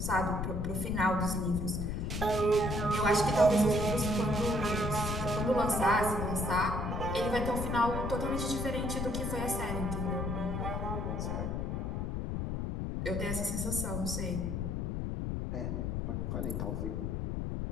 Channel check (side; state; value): left; noise; rumble, 2 dB below the sound